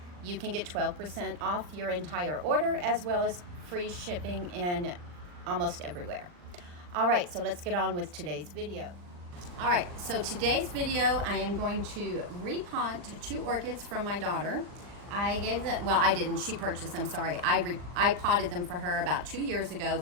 you can get 12% off your entire order, as well as free shipping in almost everywhere. All right, so let's get on with today's video. All right, so today's video, I am going to repot 2 orchids from my daughter. I gave them, well, I didn't, she purchased them, sorry. I potted them for her about 2 years ago,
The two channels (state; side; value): late; left; 39 ms